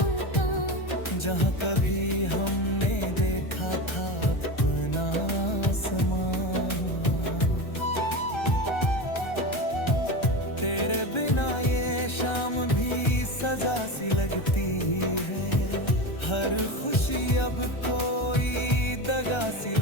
जहाँ कभी हमने देखा था अपना आसमां। तेरे बिना ये शाम भी सजा सी लगती है, हर खुशी अब कोई दगा सी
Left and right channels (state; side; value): late; right; 1.3 ms